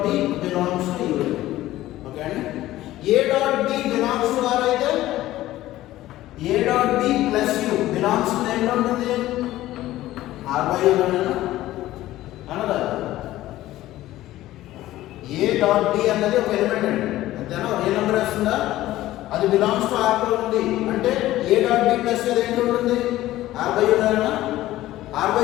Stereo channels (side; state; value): right; quieter; 15.4 dB